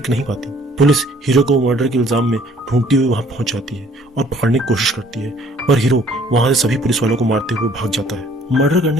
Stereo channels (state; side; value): normal; both; correlation 0.58